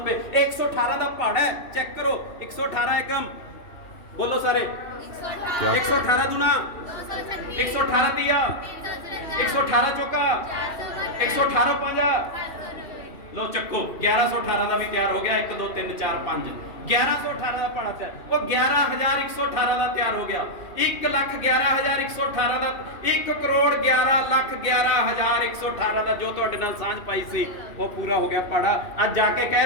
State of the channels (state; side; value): late; right; 2.7 ms